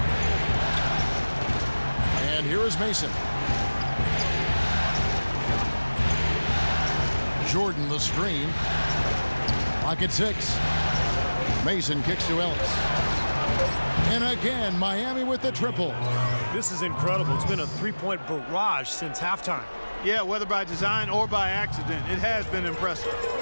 And here is Mason. Jordan the screen. Clock at 6. Mason kicks to Ellis. And again, Miami with the triple. This is incredible. It's been a three-point barrage since halftime. Yeah, whether by design or by accident, it has been impressive.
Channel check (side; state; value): both; inverted; correlation -1.00